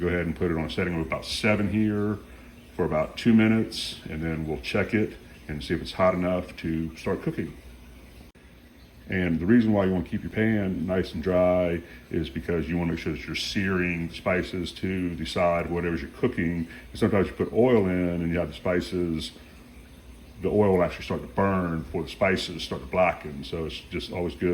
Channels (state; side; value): identical; both; correlation 1.00